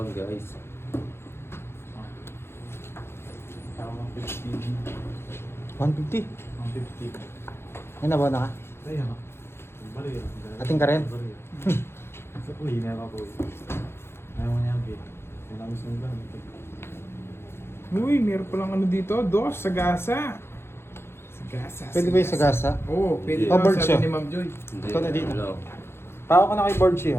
guys. 150. 150. Ay, nabaw na ka? Ay, ano? Balik yan. Ating ka rin? Sa uwi na ako. Ayaw mo niya, Bit. Yan ang gusto nila. Uy, meron palang ano dito, dos, sagasa. Sagasa. Pwede ba yung sagasa? Oo, pwede Hindi. daw, Bird sabi siya. ni Ma'am Joy. Hindi, Ikaw na dito. wala. Pao ka na kay board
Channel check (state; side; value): late; right; 0.12 ms